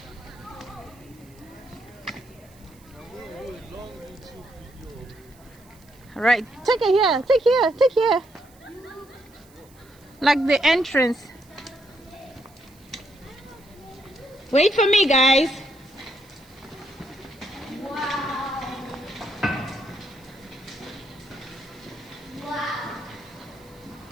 All right, take it here. Take here. Take here. Like the entrance. Wait for me, guys. Wow. Wow.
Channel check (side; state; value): right; noise; hiss, 28 dB below the sound